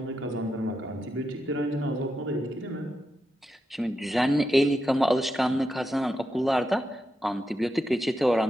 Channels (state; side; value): normal; both; correlation 0.86